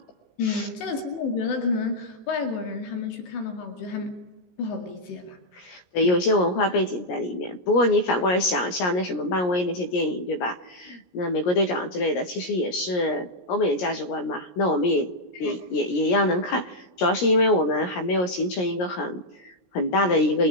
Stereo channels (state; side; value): late; right; 17 ms